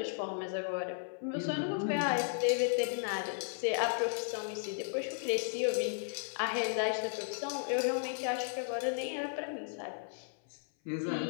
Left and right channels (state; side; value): silent; right; 54 dB below the other